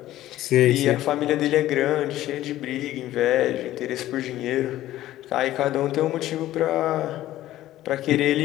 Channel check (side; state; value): right; quieter; 14.4 dB